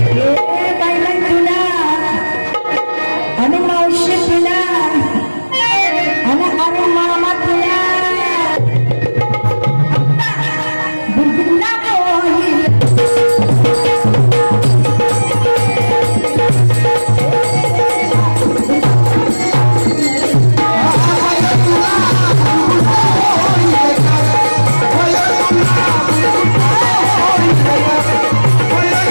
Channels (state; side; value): inverted; both; correlation -1.00